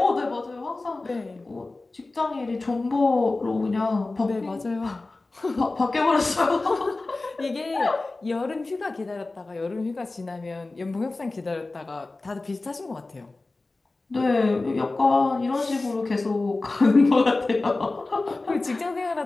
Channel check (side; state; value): right; quieter; 3.3 dB